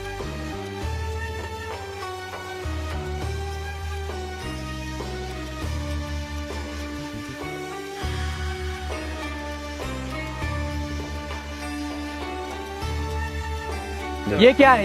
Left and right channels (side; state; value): both; identical; correlation 1.00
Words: ये क्या है?